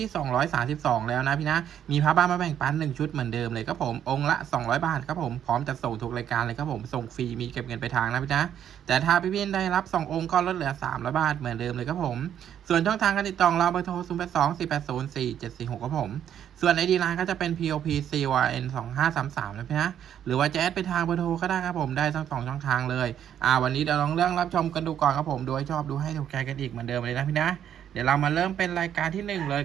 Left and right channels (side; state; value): left; quieter; 9.7 dB